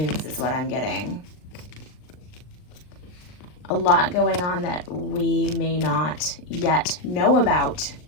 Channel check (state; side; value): late; right; 39 ms